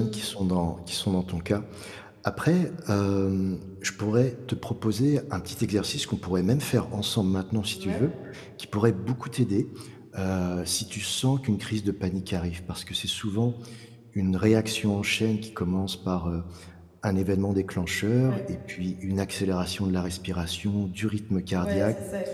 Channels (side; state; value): both; identical; correlation 1.00